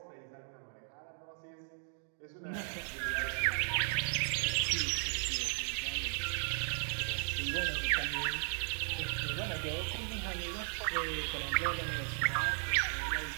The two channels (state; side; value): silent; left; 54 dB below the other